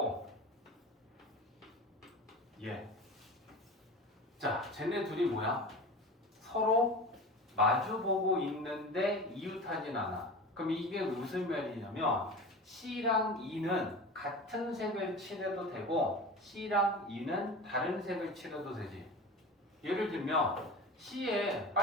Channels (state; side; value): normal; both; correlation 0.32